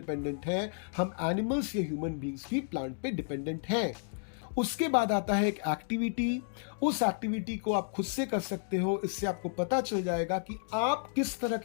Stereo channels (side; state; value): right; silent; digital silence